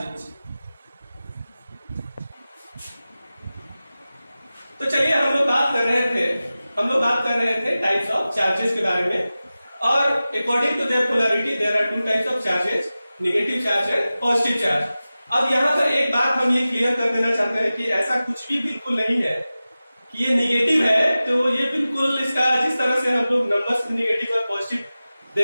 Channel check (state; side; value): inverted; both; correlation -0.96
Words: तो चलिए, हम लोग बात कर रहे थे टाइप्स ऑफ चार्जेस के बारे में और according to their polarity there are two types of charges, negative charge and positive charge. अब यहाँ पर एक बात हम ये क्लियर कर देना चाहते हैं कि ऐसा कुछ भी बिल्कुल नहीं है कि ये निगेटिव है, तो ये बिल्कुल इसका जिस तरह से हम लोग नंबर्स निगेटिव और पॉजिटिव